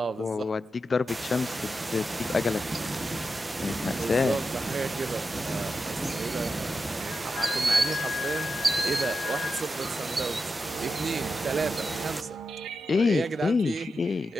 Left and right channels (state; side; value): normal; both; correlation 0.88